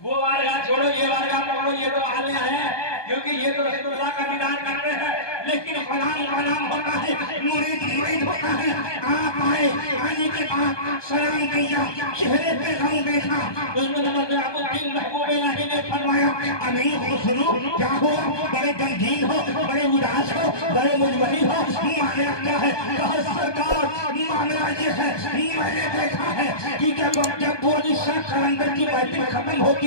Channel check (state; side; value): late; right; 1.2 ms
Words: وہ بارگاہ چھوڑو یہ بارگاہ پکڑو، یہ تو عالیہ ہے کیونکہ یہ تو رسول اللہ کا دیدار کرتے ہیں، لیکن غلام غلام ہوتا ہے، مرید مرید ہوتا ہے۔ آپ آئے، آنے کے بعد سلام کیا، چہرے پہ غم دیکھا، نظام الدین محبوب الہی نے فرمایا امیر خسرو کیا ہوا؟ بڑے غمگین ہو، بڑے اداس ہو، بڑے مجبری ہو، معاملہ کیا ہے؟ کہا سرکار معاملہ یہ ہے میں نے دیکھا ہے کہ جب ابو علی شاہ قلندر کی محفل ختم